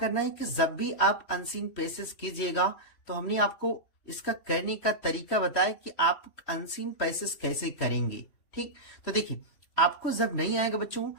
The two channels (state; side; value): late; right; 3.1 ms